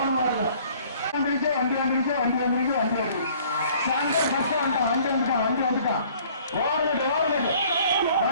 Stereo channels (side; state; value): both; inverted; correlation -0.56